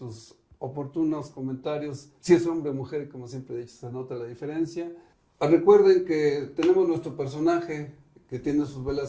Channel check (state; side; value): identical; both; correlation 1.00